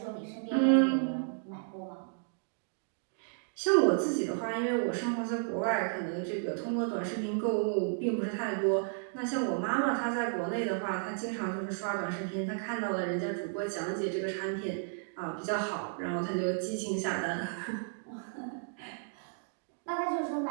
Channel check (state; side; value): silent; left; digital silence